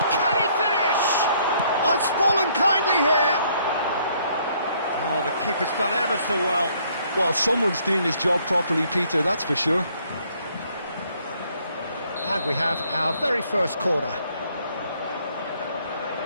Can he finish? Oh, it's fallen kindly here. Oh, the keeper's done ever so well. Well, someone's doing his job properly, Peter, that's for sure. And we have our very first corner.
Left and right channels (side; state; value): both; inverted; correlation -0.65